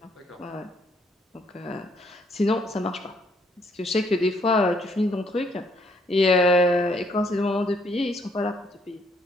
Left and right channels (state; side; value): normal; both; correlation 0.69